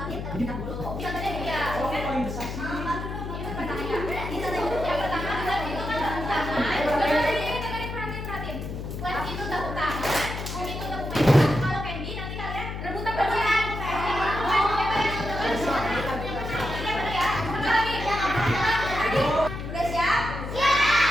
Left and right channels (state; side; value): noise; left; hum, 6 dB below the sound